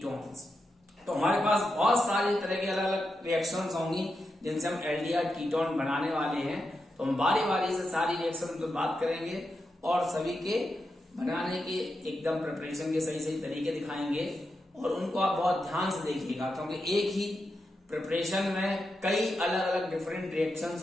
तो हमारे पास बहुत सारी तरह की अलग अलग रिएक्शंस होंगी जिनसे हम एल्डिहाइड कीटोन बनाने वाले हैं। तो हम बारी बारी से सारी रिएक्शन पर बात करेंगे और सभी के बनाने के एकदम प्रिपरेशन के सही सही तरीके दिखाएंगे और उनको आप बहुत ध्यान से देखिएगा, क्योंकि एक ही प्रिपरेशन में कई अलग अलग डिफरेंट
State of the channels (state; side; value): normal; both; correlation 0.87